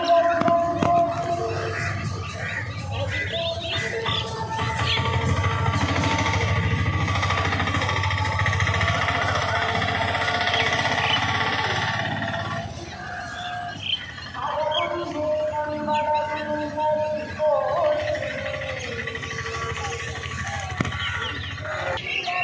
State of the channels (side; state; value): both; identical; correlation 1.00